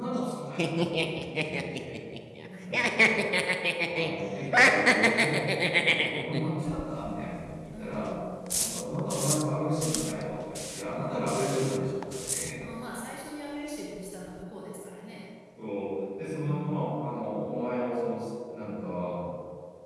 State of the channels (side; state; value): both; identical; correlation 1.00